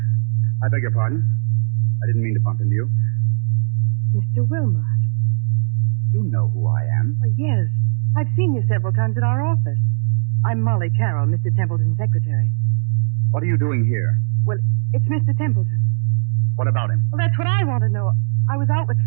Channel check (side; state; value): left; silent; 67 dB below the other